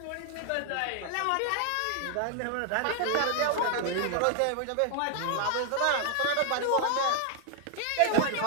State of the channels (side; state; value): both; different; correlation 0.00